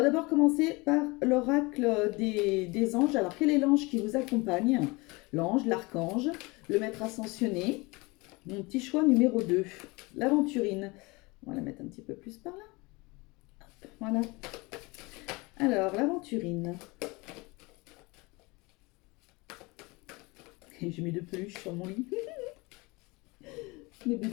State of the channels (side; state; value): right; quieter; 25.0 dB